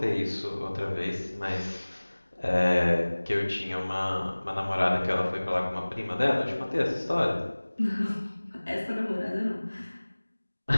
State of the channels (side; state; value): both; inverted; correlation -1.00